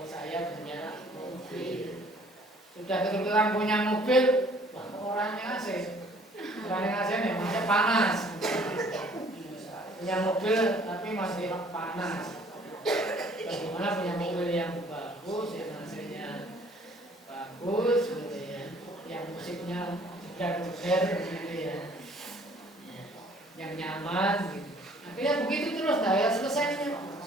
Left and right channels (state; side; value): normal; both; correlation 0.57